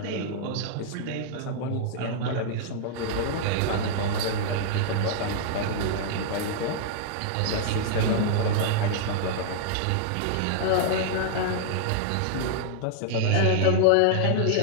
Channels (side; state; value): both; different; correlation -0.01